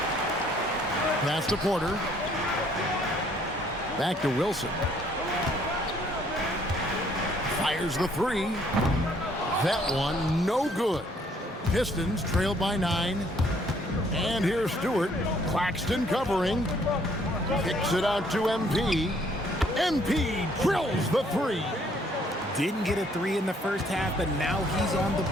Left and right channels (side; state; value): both; normal; correlation 0.64